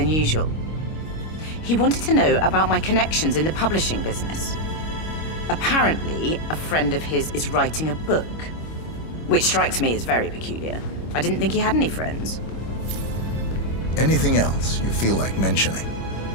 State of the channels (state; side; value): late; right; 25 ms